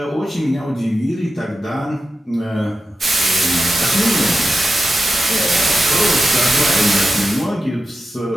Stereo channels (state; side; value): normal; both; correlation 0.91